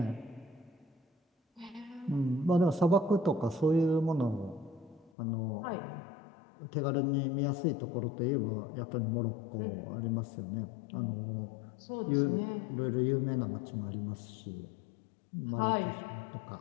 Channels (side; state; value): right; drops out; at 5.1 s